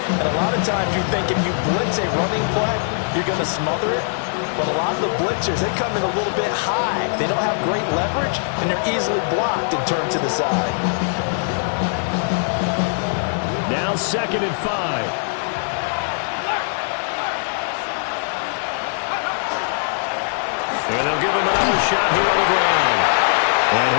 And a lot of times you think if you blitz a running play, you're going to smother it. But a lot of the blitzers, they come in a little bit high. They don't have great leverage, and they're easily blocked and turned to the side. Now 2nd and 5. And they'll give him another shot here on the ground. And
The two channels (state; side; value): silent; right; digital silence